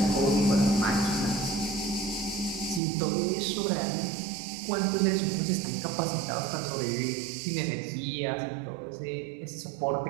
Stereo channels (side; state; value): left; drops out; at 2.8 s